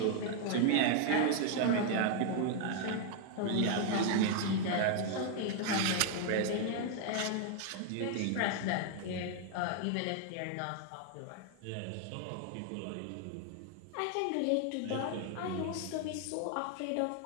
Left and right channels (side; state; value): both; different; correlation 0.00